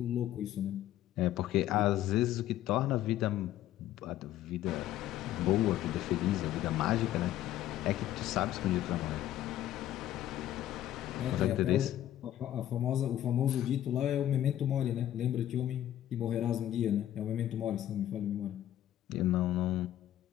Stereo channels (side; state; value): right; quieter; 12.6 dB